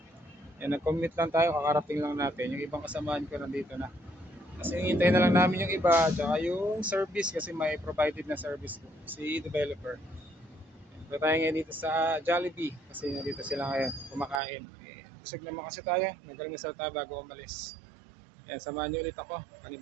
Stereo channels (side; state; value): left; drops out; at 14.4 s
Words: Yan, nag-commute lang tayo, kakarating lang natin. Yung ibang kasamaan ko nandito na. Kasi hintayin na lang namin yung iba, tsaka yung service kasi may provided na service po, si developer. Punta tayo ngayon dito sa Jollibee kasi nandito sila ngayon kumakain. Busog naman kasi tayo, nag-almusal tayo bago umalis. Yan, samahan niyo ulit ako,